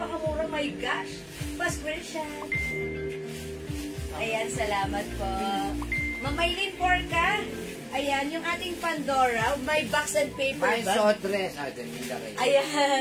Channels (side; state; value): both; identical; correlation 1.00